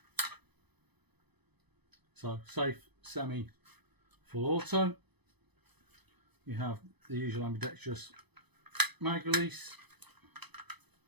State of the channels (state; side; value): late; left; 0.99 ms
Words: So safe, semi, full auto. You have the usual ambidextrous mag release.